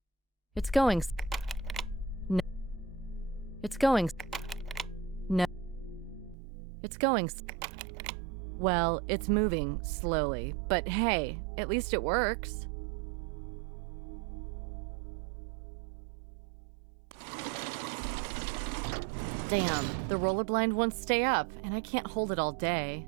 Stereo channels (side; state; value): left; drops out; at 6.4 s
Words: It's going. No. It's going. No. It's going. Well, it's moving slowly, but hey, at least it works. Damn, the roller blind won't stay up, and I can't hold it all day.